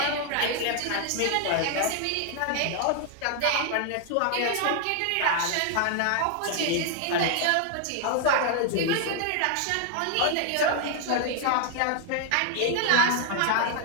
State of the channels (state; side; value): different; both; correlation 0.00